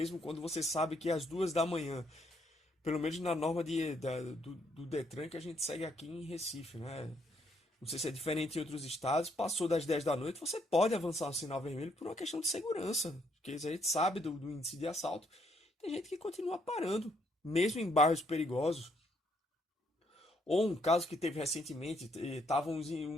quando você sabe que é às 2 da manhã, pelo menos na norma do Detran que a gente segue aqui em Recife, né? Não sei se é diferente em outros estados, passou das 10 da noite, você pode avançar o sinal vermelho por uma questão de segurança, porque a gente sabe do índice de assalto. Tem gente que continua parando, mesmo em bairros perigosos. Ou um caso que teve recentemente, estava um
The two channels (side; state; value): both; normal; correlation 0.71